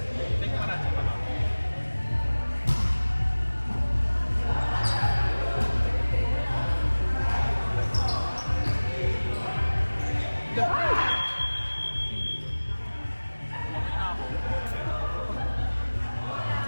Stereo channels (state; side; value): inverted; both; correlation -1.00